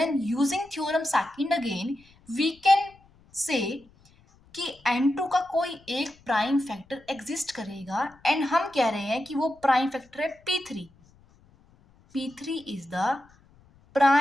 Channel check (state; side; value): noise; left; rumble, 29 dB below the sound